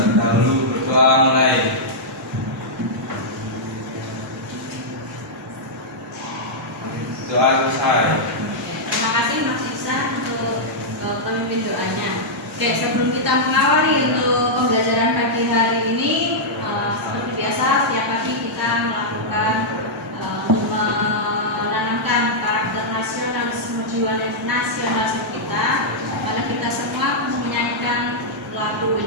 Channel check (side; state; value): both; normal; correlation -0.08